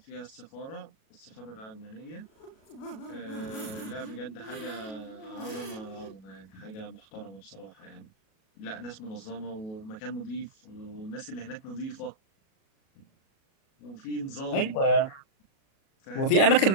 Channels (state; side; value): late; right; 37 ms